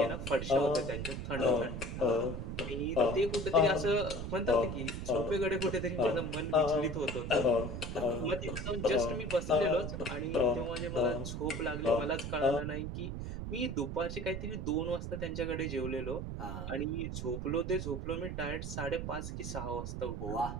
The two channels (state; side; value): noise; right; rumble, 5 dB below the sound